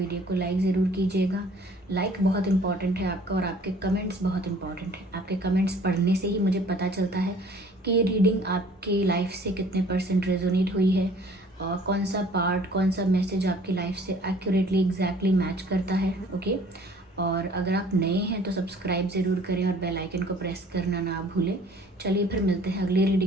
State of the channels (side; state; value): both; normal; correlation 0.53